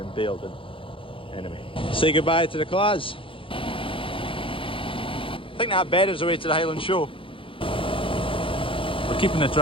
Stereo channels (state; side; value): late; right; 0.25 ms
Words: baled. And anyway, say goodbye to the class. I think that bed is away to the Highland Show. We're keeping the